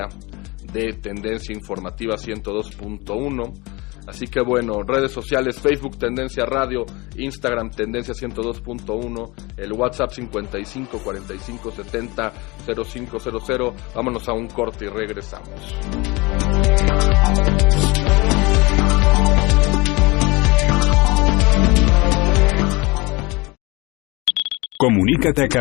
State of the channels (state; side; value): quieter; right; 24.7 dB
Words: de Tendencia Informativa 102.1. Así que bueno, redes sociales, Facebook Tendencia Radio, Instagram Tendencia 102.1, el WhatsApp 55 45 70 0500. Vámonos a un corte y regresamos. Comunícate a